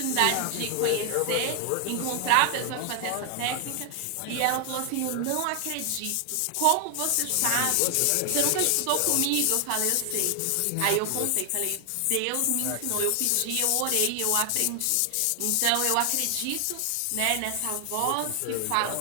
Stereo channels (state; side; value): different; both; correlation 0.00